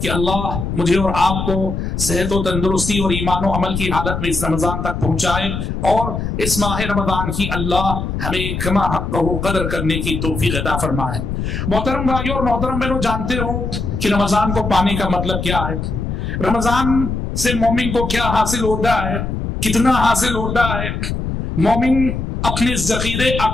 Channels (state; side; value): noise; left; rumble, 3 dB below the sound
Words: کہ اللہ مجھے اور آپ کو صحت و تندرستی اور ایمان و عمل کی حالت میں اس رمضان تک پہنچائے، اور اس ماہ رمضان کی اللہ ہمیں کما حق قدر کرنے کی توفیق عطا فرمائے۔ محترم بھائیوں اور محترم بہنوں، جانتے ہو کہ رمضان کو پانے کا مطلب کیا ہے؟ رمضان سے مومن کو کیا حاصل ہوتا ہے، کتنا حاصل ہوتا ہے، مومن اپنے ذخیرے